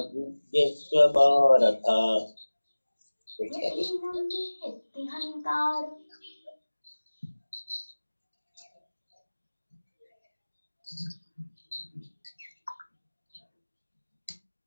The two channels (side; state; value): both; inverted; correlation -1.00